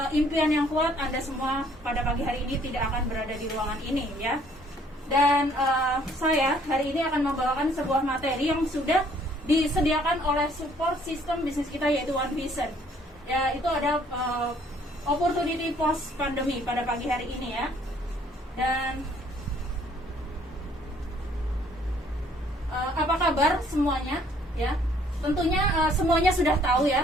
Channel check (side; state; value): both; normal; correlation 0.61